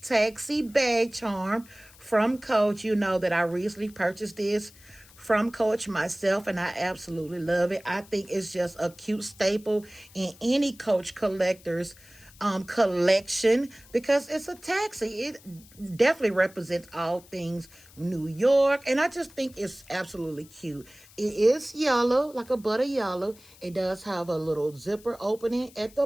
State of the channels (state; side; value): noise; left; hiss, 24 dB below the sound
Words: taxi bag charm from Coach. You know that I recently purchased this from Coach myself, and I absolutely love it. I think it's just a cute staple in any Coach collector's collection, because it's a taxi. It definitely represents all things New York, and I just think it's absolutely cute. It is yellow, like a butter yellow. It does have a little zipper opening at the